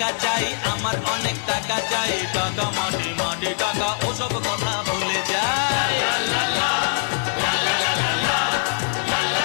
চাই আমার অনেক টাকা চাই, টাকা মাটি মাটি টাকা ওসব কথা ভুলে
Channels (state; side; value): silent; right; 63 dB below the other